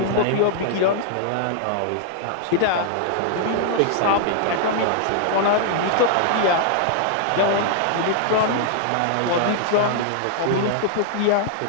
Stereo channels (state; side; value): different; both; correlation -0.01